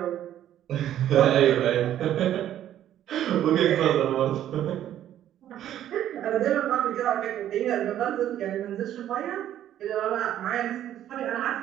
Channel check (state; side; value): quieter; left; 11.5 dB